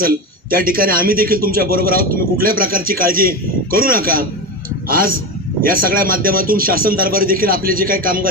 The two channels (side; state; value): both; normal; correlation 0.20